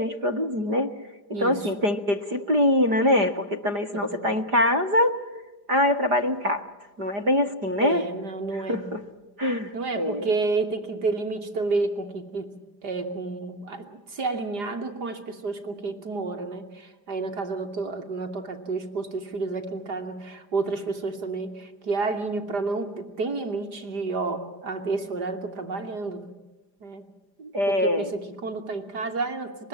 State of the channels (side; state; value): left; late; 4.9 ms